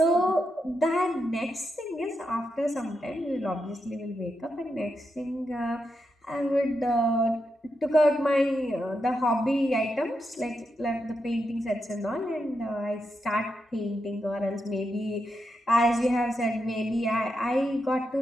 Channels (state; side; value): normal; both; correlation 0.85